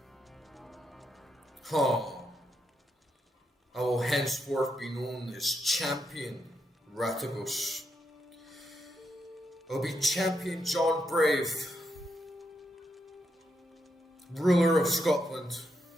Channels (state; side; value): normal; both; correlation 0.82